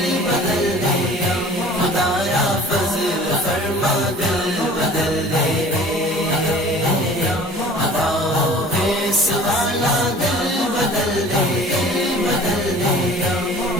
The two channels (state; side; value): normal; both; correlation 0.45